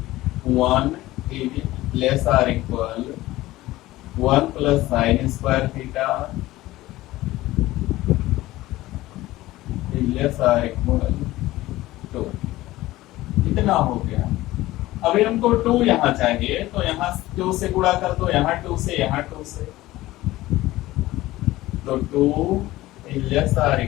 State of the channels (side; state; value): right; quieter; 17.2 dB